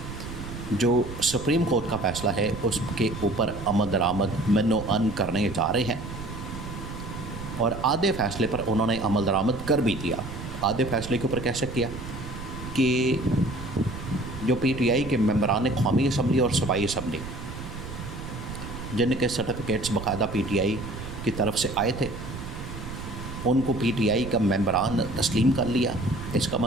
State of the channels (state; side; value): noise; right; rumble, 9 dB below the sound